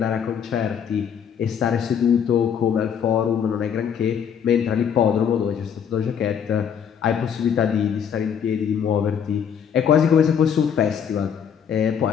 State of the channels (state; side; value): quieter; right; 7.9 dB